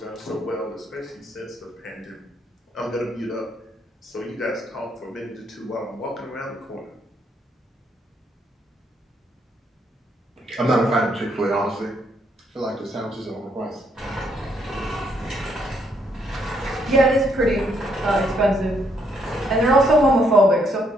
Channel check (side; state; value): both; normal; correlation 0.72